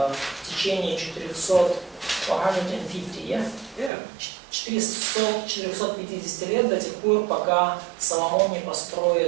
в течение 450 лет, до тех пор, пока Соломон не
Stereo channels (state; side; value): drops out; left; at 3.9 s